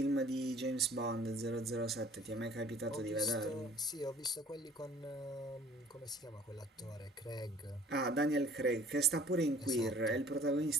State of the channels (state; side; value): normal; both; correlation 0.53